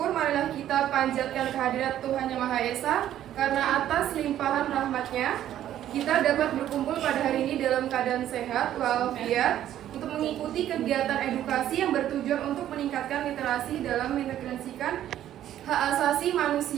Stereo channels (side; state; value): left; quieter; 11.8 dB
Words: marilah kita panjatkan kehadirat Tuhan Yang Maha Esa, karena atas limpahan rahmat-Nya kita dapat berkumpul pada hari ini dalam keadaan sehat walafiat untuk mengikuti kegiatan edukasi yang bertujuan untuk meningkatkan literasi dalam mengintegrasikan hak asasi